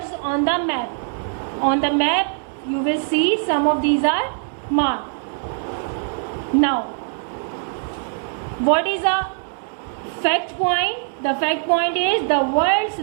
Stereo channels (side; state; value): left; silent; digital silence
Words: on the map. On the map you will see some of these are marked. Now, what is a fact point. The fact point is the world's